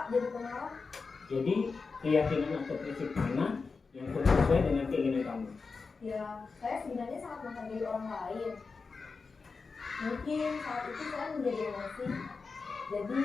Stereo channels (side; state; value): right; quieter; 4.6 dB